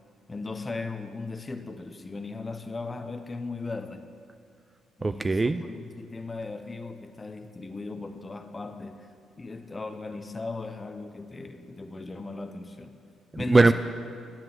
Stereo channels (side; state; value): both; normal; correlation 0.94